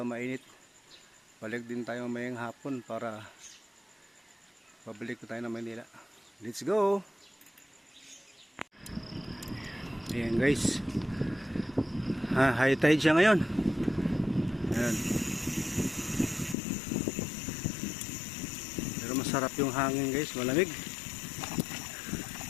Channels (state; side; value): drops out; right; at 16.6 s